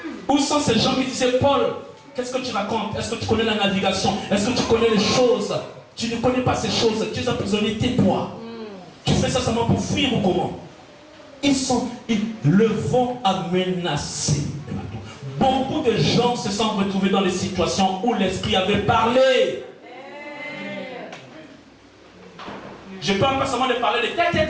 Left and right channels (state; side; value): identical; both; correlation 1.00